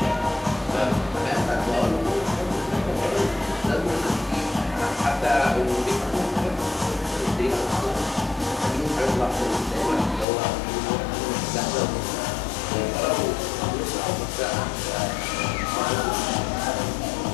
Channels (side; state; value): right; drops out; at 10.2 s